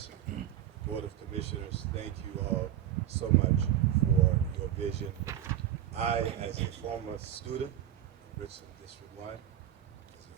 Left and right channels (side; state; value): left; quieter; 11.4 dB